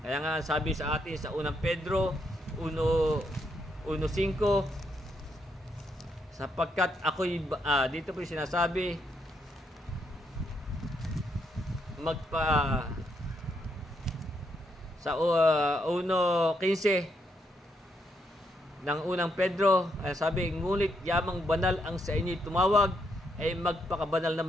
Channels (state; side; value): normal; both; correlation 0.77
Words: nga sabi sa atin sa 1 Pedro 1:5, sapagkat ako'y dito po sinasabi sa 1:15 ng 1 Pedro, sabi, ngunit yamang banal ang sa inyo'y tumawag, ay magpakabanal